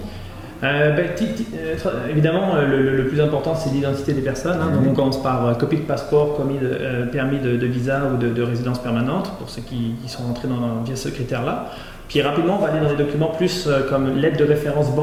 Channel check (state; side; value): identical; both; correlation 1.00